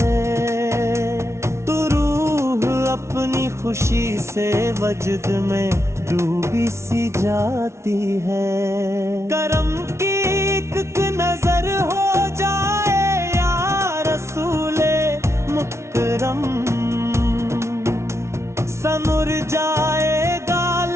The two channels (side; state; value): left; late; 0.13 ms